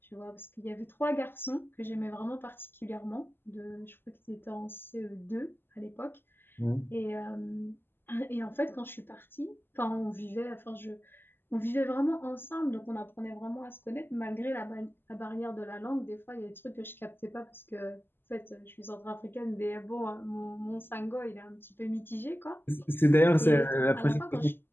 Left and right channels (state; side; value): late; right; 0.099 ms